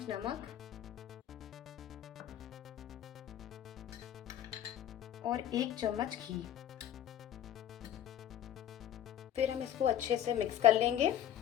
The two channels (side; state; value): right; quieter; 10.8 dB